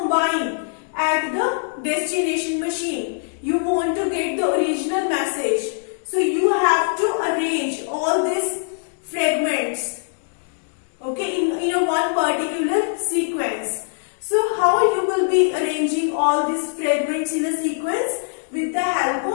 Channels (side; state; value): right; silent; digital silence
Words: at the destination machine. You want to get the original message. So you have to arrange all these fragments, okay, in a one particular sequence. So how you will be arranging all these fragments in a sequence? With the help